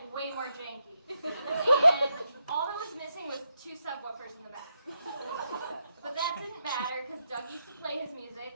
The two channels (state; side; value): inverted; both; correlation -0.82